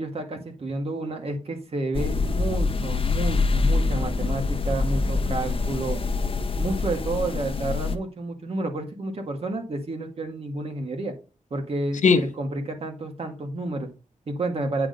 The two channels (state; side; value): normal; both; correlation 0.78